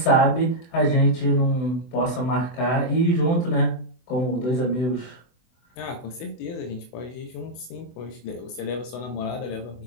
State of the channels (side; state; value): right; late; 24 ms